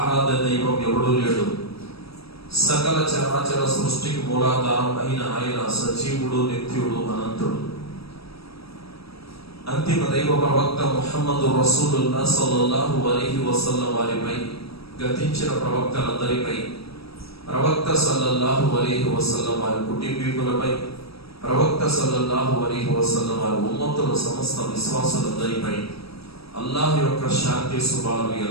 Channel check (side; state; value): right; late; 0.77 ms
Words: ఆరాధ్య దైవం ఎవడూ లేడు. సకల చరాచర సృష్టికి మూలాధారం అయిన ఆయన సజీవుడు, నిత్యుడు, అనంతుడు. అంతిమ దైవ ప్రవక్త ముహమ్మదు రసూలుల్లాహ్ సల్లల్లాహు అలైహి వసల్లం వారిపై, గతించిన ప్రవక్తలందరిపై, ప్రవక్త సల్లల్లాహు అలైహి వసల్లం వారి కుటుంబీకులపై, ప్రవక్త సల్లల్లాహు అలైహి వసల్లం వారి ఉమ్మతుల సమస్త విశ్వాసులందరిపై అల్లాహ్ యొక్క శాంతి శుభాలు